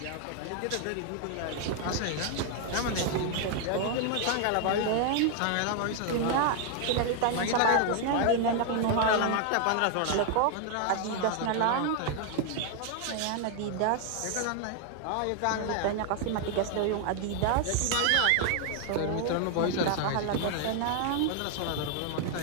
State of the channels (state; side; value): different; both; correlation 0.00